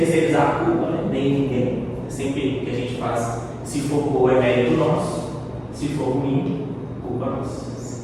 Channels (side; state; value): both; identical; correlation 1.00